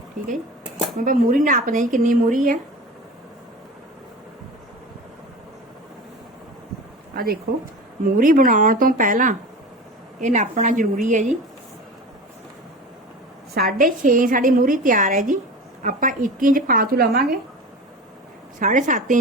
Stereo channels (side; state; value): both; normal; correlation 0.33